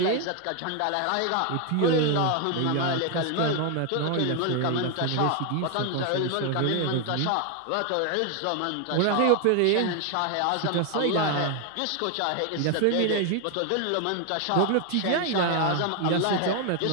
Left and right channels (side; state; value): both; different; correlation 0.01